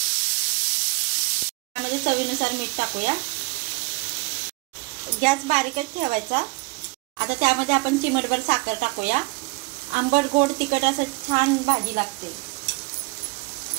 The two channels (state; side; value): quieter; left; 26.5 dB